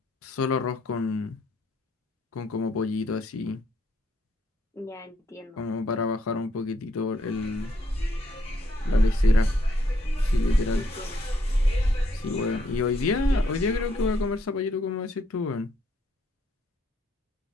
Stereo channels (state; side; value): normal; both; correlation 0.72